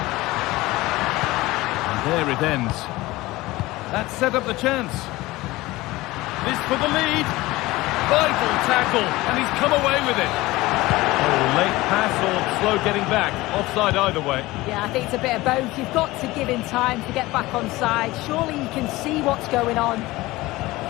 And there it ends. That set up the chance. This for the lead. Vital tackle, and he's come away with it. Oh, late pass or slow getting back. Offside either way. Yeah, I think it's a bit of both. You've got to give him time to get back on side. Surely you can see what's going on.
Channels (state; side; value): quieter; right; 19.4 dB